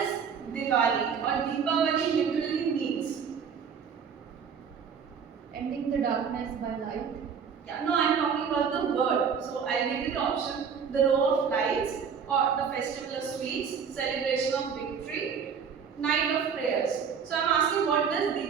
Diwali or Deepavali literally means? Ending the darkness by light. Yeah, no, I'm talking about the word. So I'll give you the option: the row of lights, or the festival of sweets, celebration of victory, night of prayers. So I'm asking, what does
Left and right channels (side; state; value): left; quieter; 6.7 dB